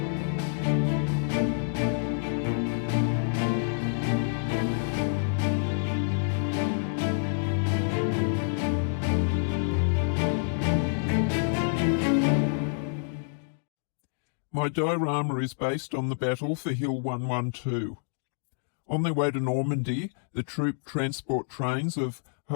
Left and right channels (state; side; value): silent; right; digital silence